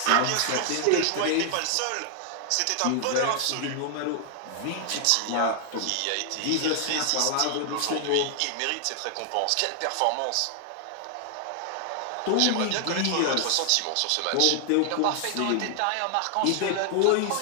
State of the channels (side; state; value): both; different; correlation 0.00